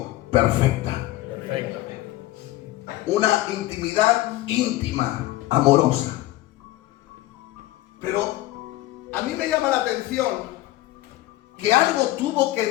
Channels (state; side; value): quieter; right; 16.6 dB